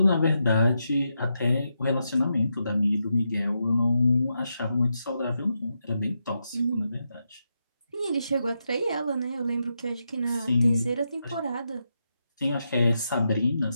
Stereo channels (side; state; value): both; inverted; correlation -0.85